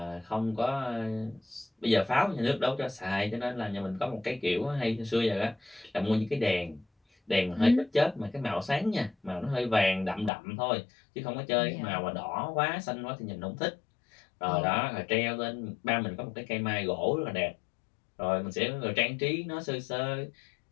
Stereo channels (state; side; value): drops out; right; at 10.3 s